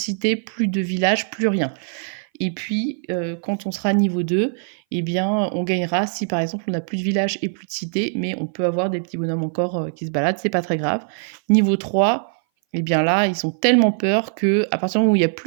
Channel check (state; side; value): silent; left; 59 dB below the other